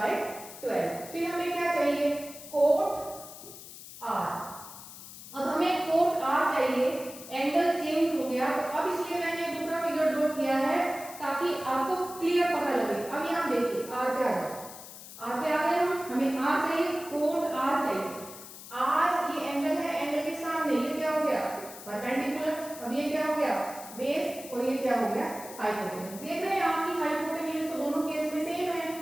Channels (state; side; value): noise; left; hiss, 14 dB below the sound